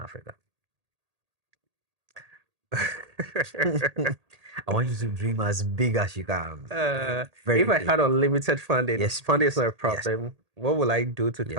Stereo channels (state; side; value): late; left; 1.8 ms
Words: I want you to dream as big as you can. Very If I big. had unlimited funding, Yes, funding is not a yes, problem. What will I do to yes,